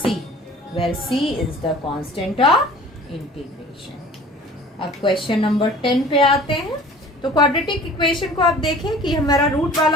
where c is the constant of integration. अब क्वेश्चन नंबर 10 पे आते हैं। तो क्वाड्रेटिक इक्वेशन को आप देखें कि हमारा रूट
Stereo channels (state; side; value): normal; both; correlation 0.46